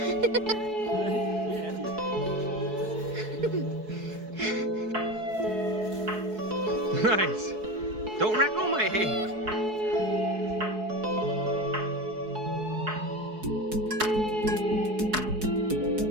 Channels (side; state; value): left; late; 4.7 ms